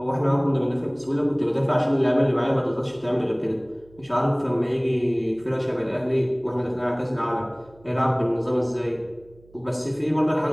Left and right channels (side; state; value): right; noise; hum, 27 dB below the sound